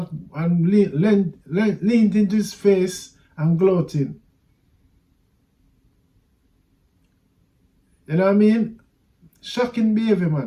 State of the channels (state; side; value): identical; both; correlation 1.00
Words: and leaned into his face and gloating. You know what I mean? Shocking behavior,